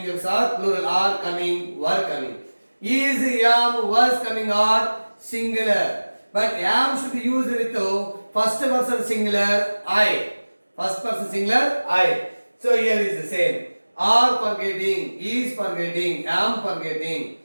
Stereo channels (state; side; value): inverted; both; correlation -1.00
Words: verbs are plural, are coming, were coming. Is, am, was coming are singular. But am should be used with first person singular I. First person singular I. So here is the same. Are forgetting, is forgetting, am forgetting.